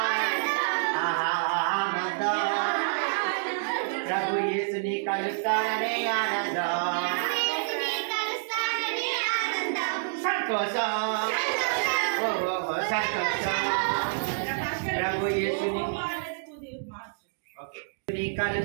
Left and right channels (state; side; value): silent; left; digital silence